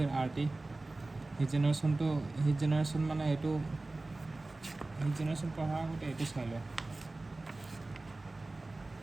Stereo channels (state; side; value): quieter; left; 3.1 dB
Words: RT. Heat generation মানে এটো heat generation পঢ়া আগতে এটো চাই লও